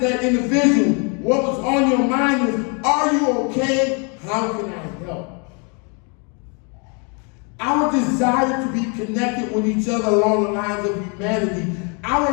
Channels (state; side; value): quieter; right; 35.2 dB